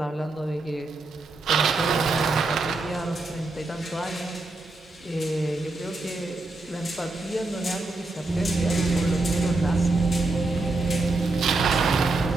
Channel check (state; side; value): quieter; left; 3.2 dB